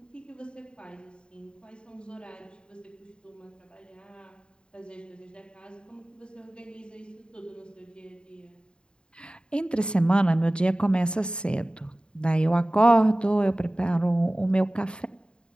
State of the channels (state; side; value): late; right; 0.052 ms